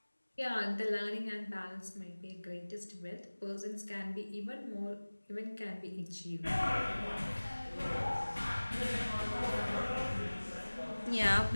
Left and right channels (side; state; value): both; inverted; correlation -1.00